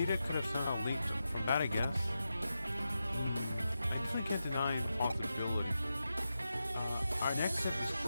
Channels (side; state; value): both; inverted; correlation -0.90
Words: could have somehow leaked from that, I guess. I definitely can't deny the possibility. Our next step is